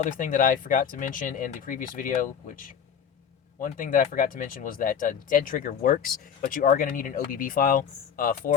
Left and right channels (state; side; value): quieter; right; 7.8 dB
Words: thing that I forgot to mention in the previous video, one thing that I forgot to mention was that Dead Trigger works, but you are going to need an OBB file